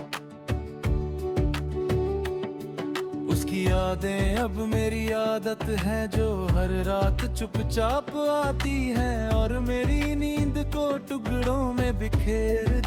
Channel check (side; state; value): both; identical; correlation 1.00